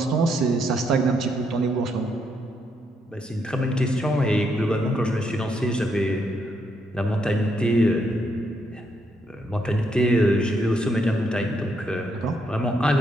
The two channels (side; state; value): both; normal; correlation 0.76